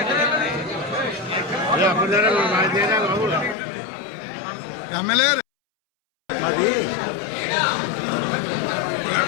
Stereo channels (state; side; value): drops out; right; at 3.6 s